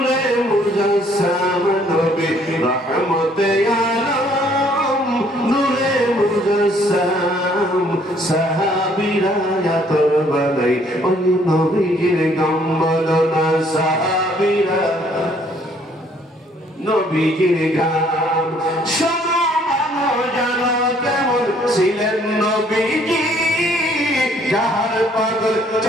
মুজাসসাম, নবী রহমতে আলম নূরে মুজাসসাম সাহাবীরা ইয়াতর বানাই ওই নবীজির গান বলো না, সাহাবীরা নবীজির গান। শোনো মানো জানো কেমন ছিলেন নবীজি, যাহার পাগল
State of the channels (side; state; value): both; normal; correlation 0.63